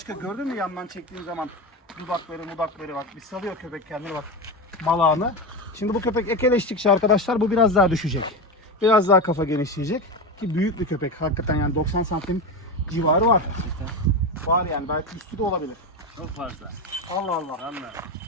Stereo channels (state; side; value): normal; both; correlation 0.18